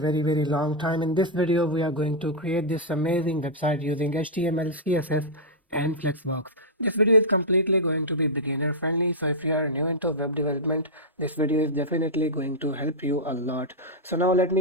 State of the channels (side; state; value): both; normal; correlation -0.08